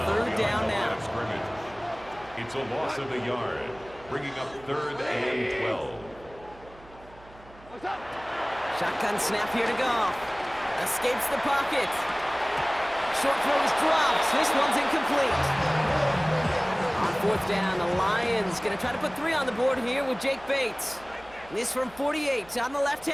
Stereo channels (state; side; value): noise; right; hum, 23 dB below the sound